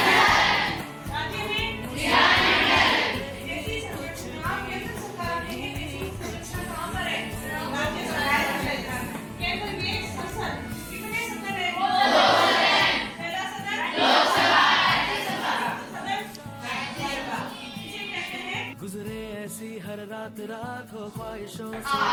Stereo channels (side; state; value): both; identical; correlation 1.00